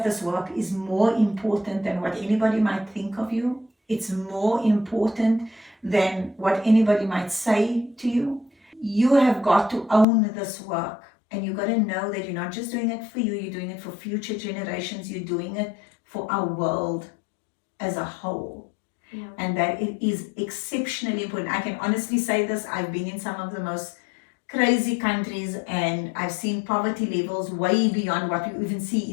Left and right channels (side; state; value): right; drops out; at 10.1 s